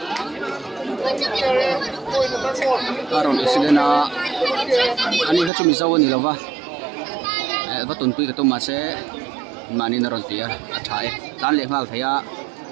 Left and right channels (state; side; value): drops out; left; at 5.5 s